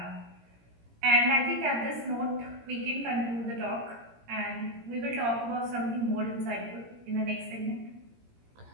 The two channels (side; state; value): left; late; 17 ms